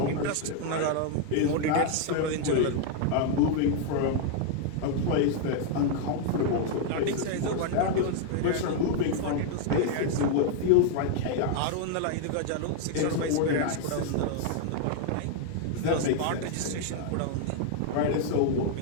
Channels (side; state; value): both; different; correlation 0.00